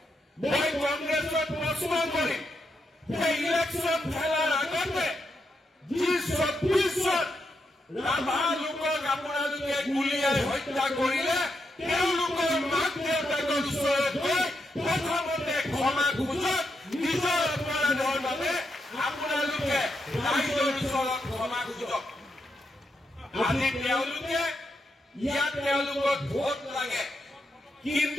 মই কংগ্ৰেছত প্ৰশ্ন কৰিম যে ইলেকশ্যন খেলাৰ আগতে যি 26 জন ৰাভা লোকক আপোনালোকে গুলীয়াই হত্যা কৰিলে তেওঁলোকৰ মাক দেউতাকৰ ওচৰত গৈ প্ৰথমতে ক্ষমা খোজক নিজৰ অপৰাধৰ বাবে আপোনালোকে ৰাইজৰ ওচৰত ক্ষমা খোজক আজি তেওঁলোকে ইয়াত তেওঁলোকক ভোট লাগে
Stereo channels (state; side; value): normal; both; correlation 0.83